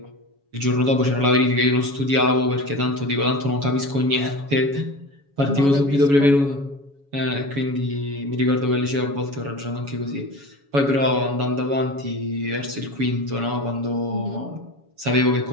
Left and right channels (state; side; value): late; left; 7.1 ms